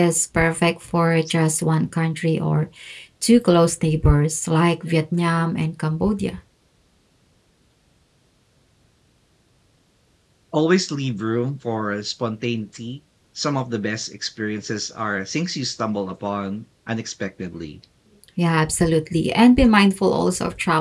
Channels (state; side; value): identical; both; correlation 1.00